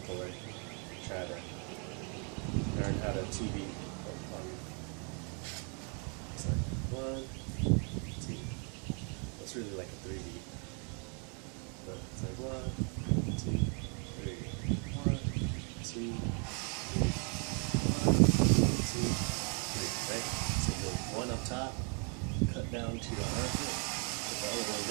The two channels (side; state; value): left; quieter; 37.9 dB